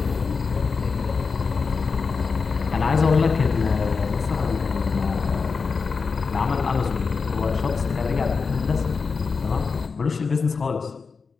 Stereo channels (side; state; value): right; quieter; 5.0 dB